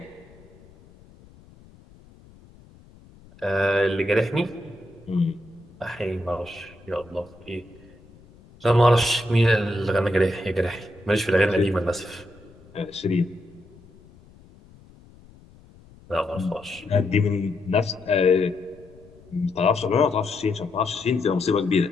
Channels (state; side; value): noise; left; rumble, 25 dB below the sound